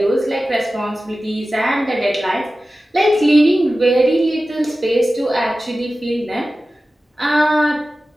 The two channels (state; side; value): normal; both; correlation 0.95